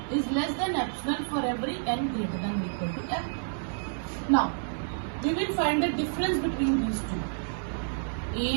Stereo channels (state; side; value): silent; left; 58 dB below the other